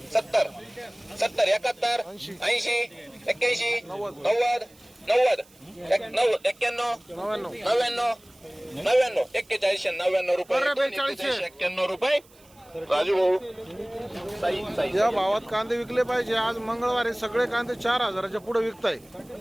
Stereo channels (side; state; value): right; noise; hiss, 28 dB below the sound